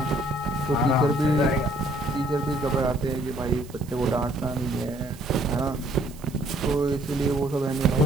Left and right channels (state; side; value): noise; right; hiss, 22 dB below the sound